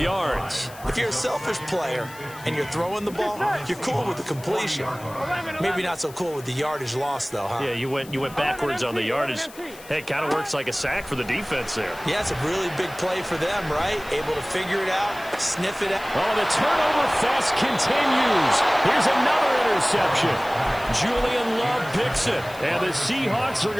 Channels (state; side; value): noise; left; hiss, 19 dB below the sound